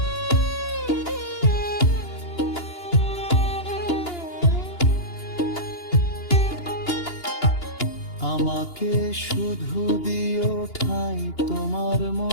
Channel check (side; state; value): right; late; 2.8 ms